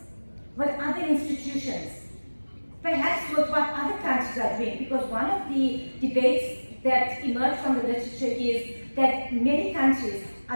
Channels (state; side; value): inverted; both; correlation -1.00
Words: with other institutions, perhaps with what other countries are doing? Because one of the debates that emerged from the literature is that many countries